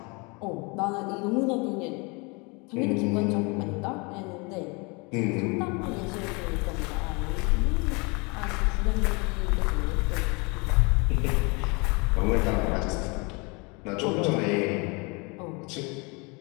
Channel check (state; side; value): quieter; right; 29.4 dB